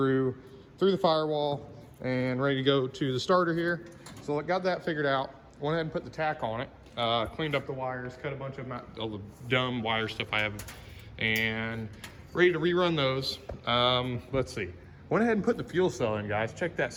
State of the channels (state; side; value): identical; both; correlation 1.00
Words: the firewall and ready to go to the starter here. So I got that figured out, went ahead and put the tack on it, cleaned up the wires, cut a bunch of all the dumb wire stuff I have, and ready to rerun those. Let's see, went ahead and put the fuel cell in, guys. Check that